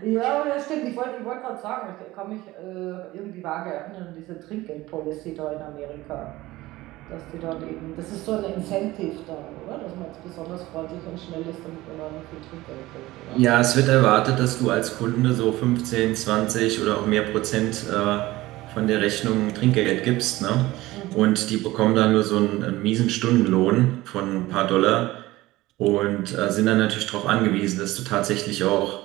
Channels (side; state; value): left; quieter; 18.1 dB